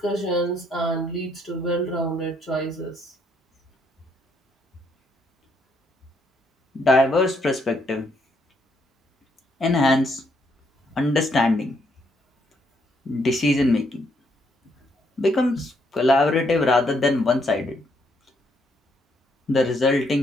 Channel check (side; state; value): both; normal; correlation 0.72